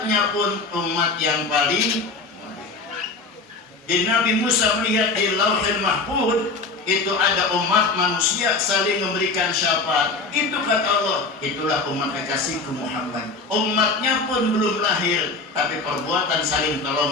pun umat yang paling mulia. Jadi Nabi Musa melihat di Lauhil Mahfuz itu ada umat manusia saling memberikan syafaat. Itu kata Allah, itulah umat kekasihku Muhammad. Umatnya pun belum lahir, tapi perbuatan saling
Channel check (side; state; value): right; quieter; 3.8 dB